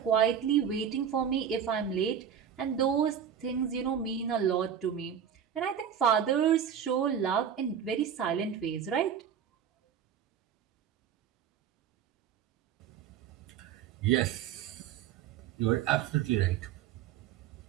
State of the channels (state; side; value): quieter; left; 8.4 dB